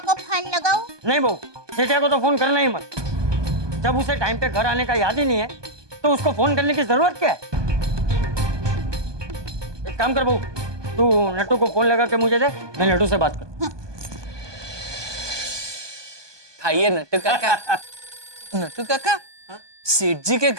को फोन लगाऊं? नहीं बहू, जेठिया को तो फोन करना ही मत। जब उसे टाइम पे घर आने का याद ही नहीं है तो उसको फोन करने की जरूरत क्या है? एक काम कर बहू, तू नट्टू को फोन लगा के मुझे दे, मैं नट्टू से बात कर। खाइए नट्टू काका। नट्टू काका, सेठ जी के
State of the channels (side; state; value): left; late; 1.2 ms